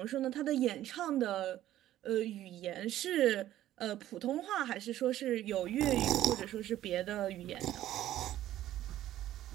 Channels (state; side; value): quieter; left; 13.3 dB